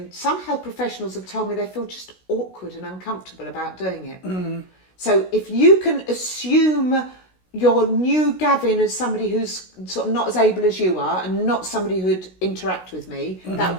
some health professionals have told me they feel just awkward and uncomfortable about doing it. So if you can assume your new Gavin as somebody who's sort of not as able as you are and not somebody who'd interact with me, that would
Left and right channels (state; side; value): late; right; 16 ms